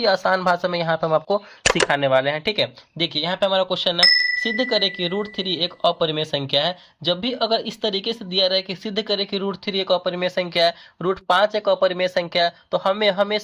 आसान भाषा में यहाँ पे हम आपको सिखाने वाले हैं। ठीक है, देखिए यहाँ पे हमारा क्वेश्चन है, सिद्ध करें कि रूट थ्री एक अपरिमेय संख्या है। जब भी अगर इस तरीके से दिया रहे कि सिद्ध करें कि रूट थ्री एक अपरिमेय संख्या है, रूट पांच एक अपरिमेय संख्या है, तो हमें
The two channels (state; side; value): identical; both; correlation 1.00